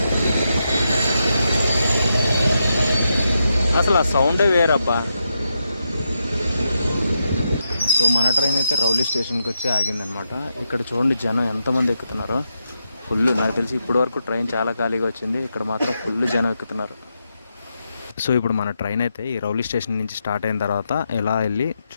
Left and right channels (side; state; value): both; inverted; correlation -0.85